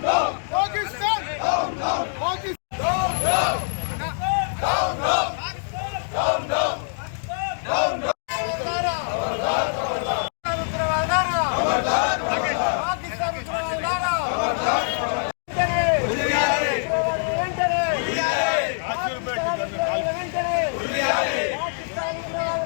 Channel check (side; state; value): right; silent; digital silence